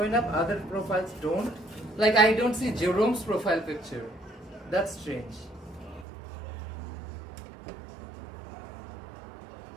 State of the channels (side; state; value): left; drops out; at 6.1 s